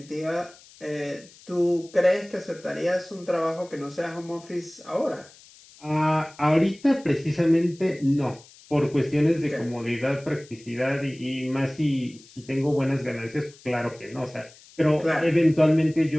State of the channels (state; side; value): noise; left; hiss, 24 dB below the sound